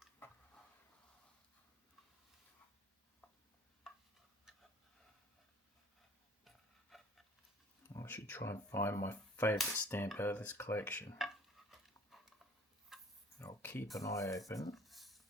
I should try and find my favourite stamp out of this collection. I'll keep an eye open.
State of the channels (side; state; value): both; normal; correlation 0.50